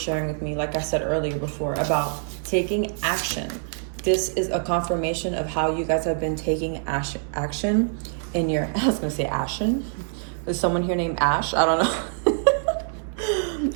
with me, like I said earlier before, about taking action. This is a confirmation of how you guys have been taking action in your, I was going to say action. Is someone here named Ash? I don't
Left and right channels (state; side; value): silent; left; 62 dB below the other